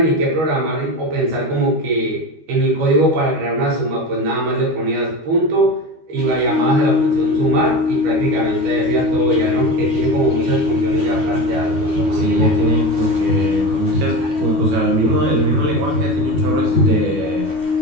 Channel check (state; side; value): late; left; 12 ms